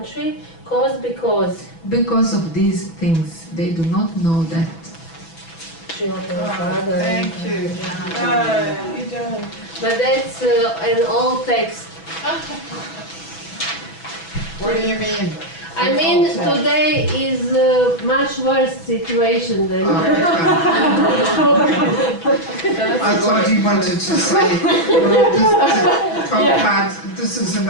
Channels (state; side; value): late; right; 6.1 ms